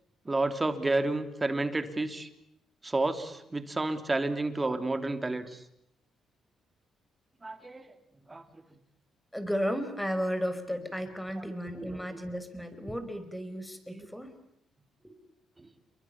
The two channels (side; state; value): both; normal; correlation 0.95